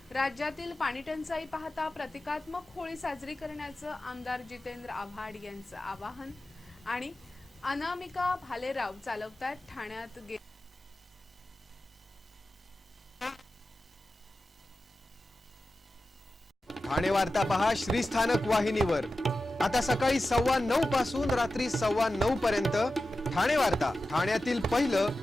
राज्यातील पाणीटंचाई पाहता प्रतिकात्मक होळी साजरी करण्याचं आमदार जितेंद्र आव्हाड यांचं आवाहन। आणि अनामिका भालेराव चालवतात ठाण्यात ठाणे वार्ता पहा श्रीस्थानक वाहिनीवर। आता सकाळी 9:15 पासून रात्री 9:15 पर्यंत ठाणे वार्ता, ठाण्यातील पहिलं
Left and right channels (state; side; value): normal; both; correlation 0.93